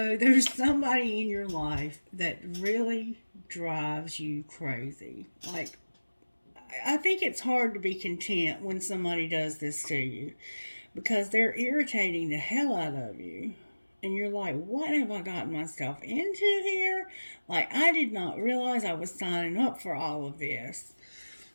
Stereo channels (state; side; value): inverted; both; correlation -1.00